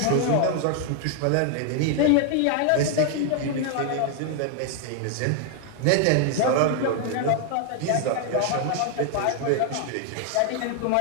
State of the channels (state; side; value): different; both; correlation 0.00